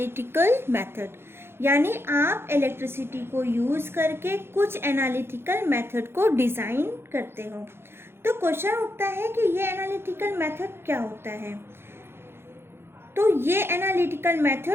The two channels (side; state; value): left; late; 0.11 ms